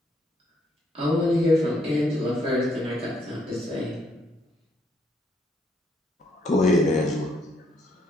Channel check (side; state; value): both; normal; correlation 0.72